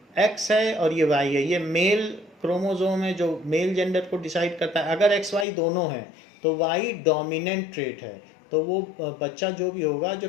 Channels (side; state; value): right; drops out; at 5.5 s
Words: X है और ये Y है, ये मेल क्रोमोसोम है जो मेल जेंडर को डिसाइड करता है। अगर XY दोनों हैं तो Y डोमिनेंट ट्रेट है, तो वो बच्चा जो भी होगा, जो